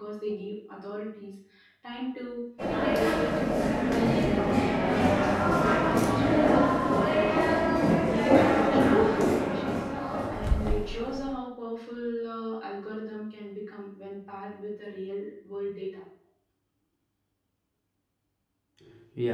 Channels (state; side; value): identical; both; correlation 1.00